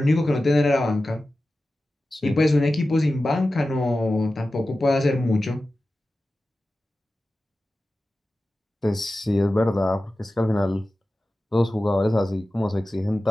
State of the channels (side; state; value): both; normal; correlation 0.94